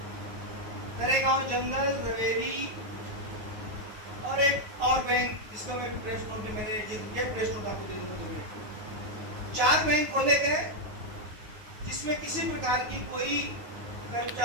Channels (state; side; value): late; left; 9.5 ms